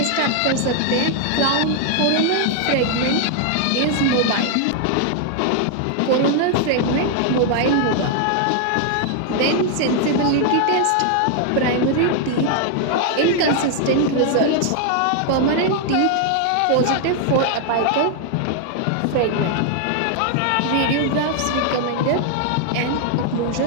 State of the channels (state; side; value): different; both; correlation 0.00